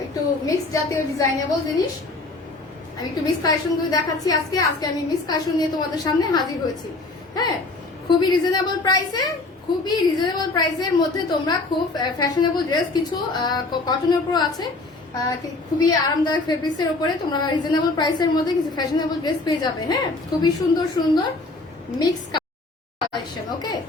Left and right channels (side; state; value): right; quieter; 3.3 dB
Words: একটু মিক্স জাতীয় ডিজাইনেবল জিনিস। আমি একটু মিক্স কালেকশন গুলো দেখাচ্ছি আজকে আমি মিক্স কালেকশন নিয়ে তোমাদের সামনে হাজির হয়েছি। হ্যাঁ, খুবই রিজনেবল প্রাইসের মধ্যে তোমরা খুব ফ্যাশনেবল ড্রেস কিছু কটনের উপর আছে, খুবই আরামদায়ক ফেব্রিক্স এর উপরে তোমরা রিজনেবল প্রাইসের মধ্যে কিছু ফ্যাশনেবল ড্রেস পেয়ে যাবে। হ্যাঁ, খুবই সুন্দর সুন্দর মিক্স কালেকশন। ওকে,